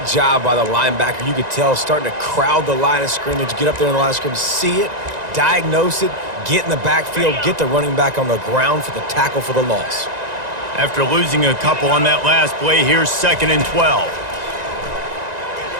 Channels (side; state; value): left; late; 1.9 ms